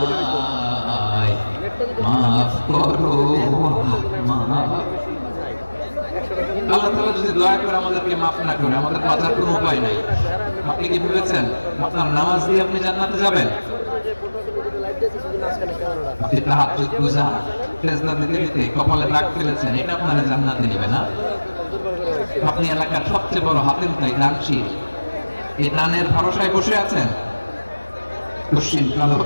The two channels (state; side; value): inverted; both; correlation -1.00